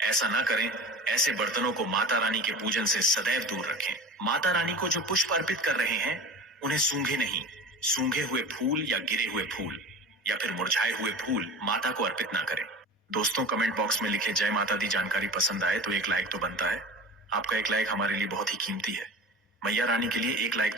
ना करें। ऐसे बर्तनों को माता रानी के पूजन से सदैव दूर रखें। माता रानी को जो पुष्प अर्पित कर रहे हैं उन्हें सूंघे नहीं। सूंघे हुए फूल या गिरे हुए फूल या फिर मुरझाए हुए फूल माता को अर्पित ना करें। दोस्तों, कमेंट बॉक्स में लिखे जय माता दी जानकारी पसंद आए तो एक लाइक तो बनता है। आपका एक लाइक हमारे लिए बहुत ही कीमती है। मैया रानी के लिए एक लाइक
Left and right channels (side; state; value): both; normal; correlation 0.34